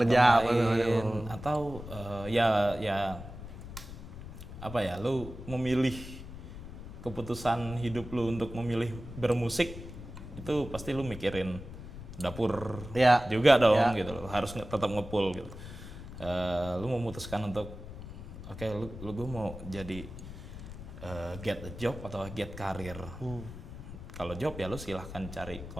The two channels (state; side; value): noise; left; rumble, 12 dB below the sound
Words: lain, atau ya apa ya, lu memilih keputusan hidup lu untuk memilih bermusik, itu pasti lu mikirin dapur juga dong gitu loh, harus tetap ngepull gitu. Lu memutuskan untuk oke, lu gue mau jadi get a job atau get karir. Kalau job ya lu silahkan cari